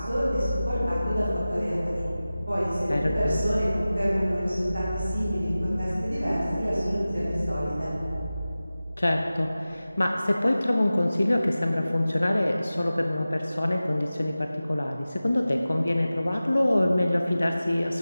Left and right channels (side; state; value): both; inverted; correlation -0.96